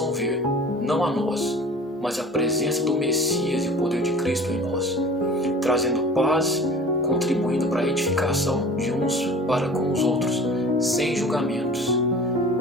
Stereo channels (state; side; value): normal; both; correlation 0.42